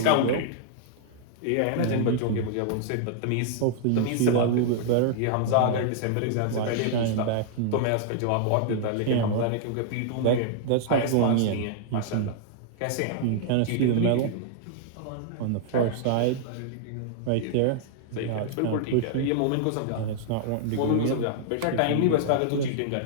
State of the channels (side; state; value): both; different; correlation -0.01